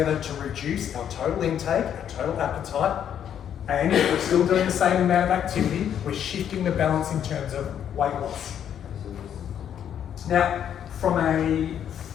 to reduce our total intake, our total appetite, and we're still doing the same amount of activity. We're shifting the balance in terms of weight loss. Now, from a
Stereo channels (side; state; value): right; quieter; 9.3 dB